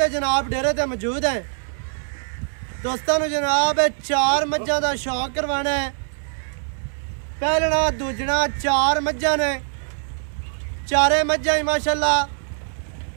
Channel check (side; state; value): left; silent; 64 dB below the other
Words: जनाब डेरे ते मौजूद है। दोस्तों जनाब चार मज्जां का शौक करवाना है। पहलना दूजना चार मज्जां ने, चारे मज्जां ही माशाल्लाह